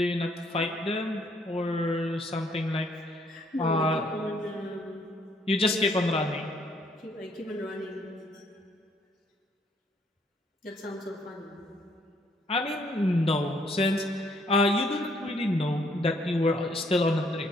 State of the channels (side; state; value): both; normal; correlation 0.67